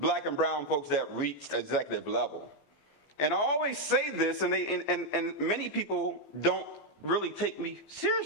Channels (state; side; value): late; right; 14 ms